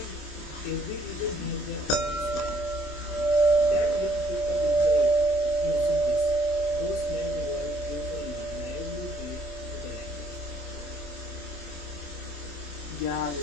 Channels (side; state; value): right; late; 27 ms